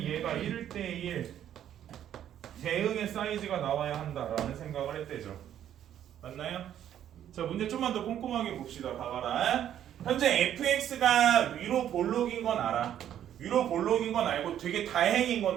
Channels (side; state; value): left; quieter; 10.6 dB